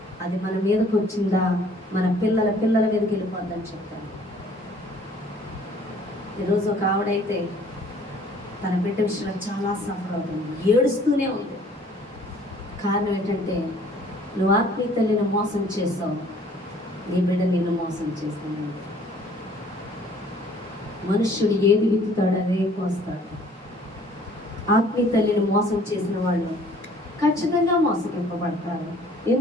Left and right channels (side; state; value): both; normal; correlation 0.56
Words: అది మన మీదకి వచ్చిందా, మన పిల్లల మీదకి వెళ్ళిపోద్దని చెప్పాను. ఈరోజు ఒక ఆవిడైతే తన బిడ్డ విషయంలో చాలా సఫర్ అవుతుంది, ఏడుస్తూనే ఉంది. కారణం ఏంటంటే నువ్వు ఆత్మీయ తల్లిని మోసం చేసావు, నీ బిడ్డ నిన్ను మోసం చేస్తాను. మనుష్యుడు ఏది విత్తుతాడు అదే కోస్తాడు. ఆత్మీయ తల్లిని మోసం చేసిన వాళ్ళు ఖచ్చితంగా మోసగింపబడతారు.